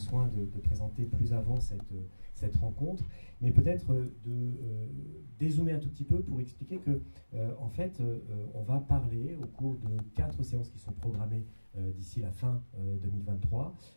de présenter plus avant cette rencontre, mais peut-être de dézoomer un tout petit peu pour expliquer que en fait on va parler au cours de 4 séances qui sont programmées d'ici la fin 2023,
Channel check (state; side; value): inverted; both; correlation -1.00